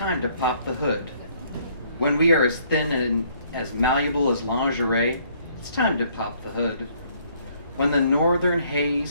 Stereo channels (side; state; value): both; inverted; correlation -0.64